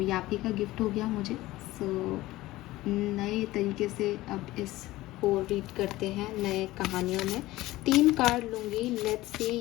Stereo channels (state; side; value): quieter; right; 17.6 dB